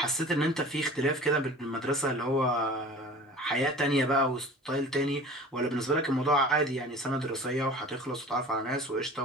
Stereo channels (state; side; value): normal; both; correlation 0.41